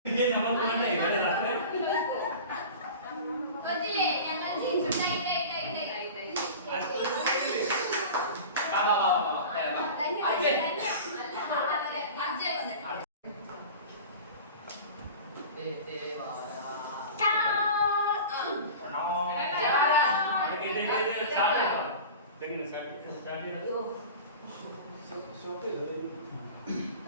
ಗೊತ್ತಿല്ലേ ഞങ്ങൾ ജയിച്ചുണ്ടായി വാ വാ വാ വാ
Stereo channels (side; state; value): both; inverted; correlation -0.36